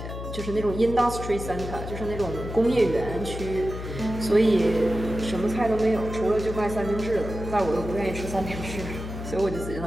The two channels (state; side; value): noise; left; hum, 8 dB below the sound